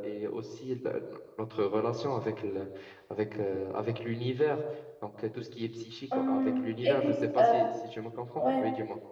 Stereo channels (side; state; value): both; identical; correlation 1.00